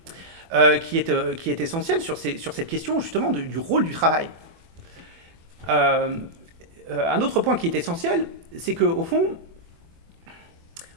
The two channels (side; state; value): left; late; 24 ms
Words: qui est essentiel sur cette question, justement, du rôle du travail. Un autre point qui est essentiel, c'est qu'au fond,